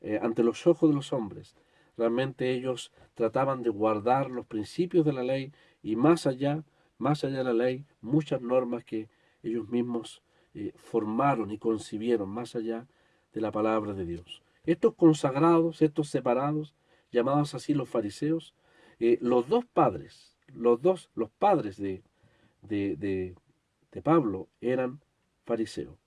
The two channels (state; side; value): identical; both; correlation 1.00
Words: ante los ojos de los hombres, realmente ellos trataban de guardar los principios de la ley y más allá de la ley, muchas normas que ellos mismos formaron y concibieron más allá de la palabra de Dios. Estos consagrados, estos separados, llamados así los fariseos, los padres de Pablo eran fariseos,